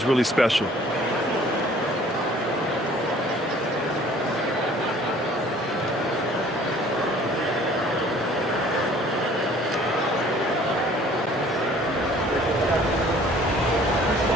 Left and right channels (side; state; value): both; normal; correlation 0.53